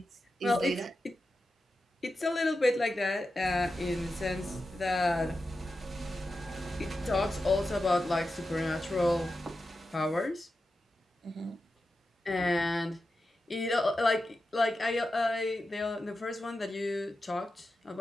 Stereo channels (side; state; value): both; normal; correlation 0.91